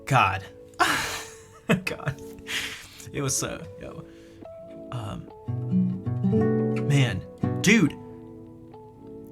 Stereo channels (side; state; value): both; identical; correlation 1.00